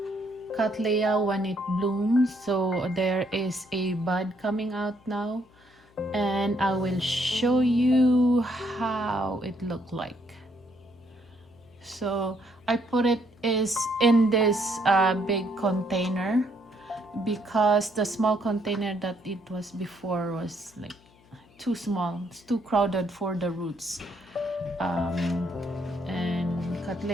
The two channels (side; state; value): left; noise; hum, 29 dB below the sound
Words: Cattleya when it blooms. So there is a bud coming out now and I will show you how it looked like. So I put it is in this big container because the small container that it was before was like too small. It's too crowded for the roots. And